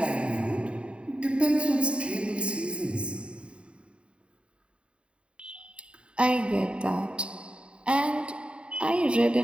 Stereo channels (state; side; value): late; left; 0.057 ms